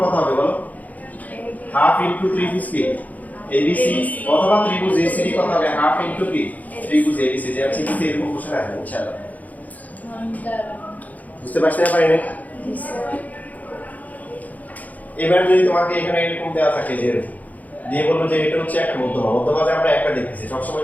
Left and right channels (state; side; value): late; right; 0.077 ms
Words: কত হবে বলো হাফ ইনটু ত্রিভুজ কি এবিসি অথবা ত্রিভুজ এসিডি কত হবে হাফ ইনটু কি ত্রিভুজ এবিসি যে আছে কিন্তু এরকম কোশ্চেন আসবে ইনশাআল্লাহ বুঝতে পারছেন না পারেন এবার যদি তোমাকে এখানে এরকম দেওয়া থাকে যে দিয়ে বলবো যে এটা হচ্ছে একটা মধ্যমা মধ্যমা যে আমরা একটা দেখতেছি